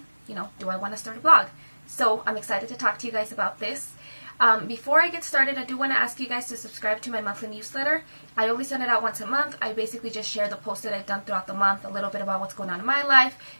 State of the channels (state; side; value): inverted; both; correlation -1.00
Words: do I want to start a blog? So I'm excited to talk to you guys about this. Before I get started, I do want to ask you guys to subscribe to my monthly newsletter. I only send it out once a month. I basically just share the posts that I've done throughout the month, a little bit about what's going on in my life,